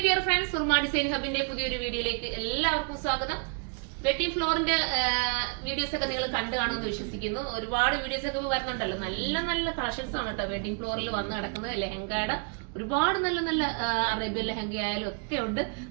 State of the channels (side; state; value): left; quieter; 38.1 dB